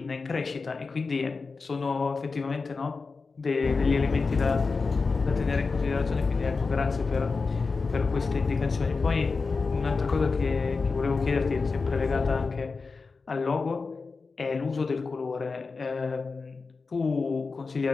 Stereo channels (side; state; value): right; quieter; 4.4 dB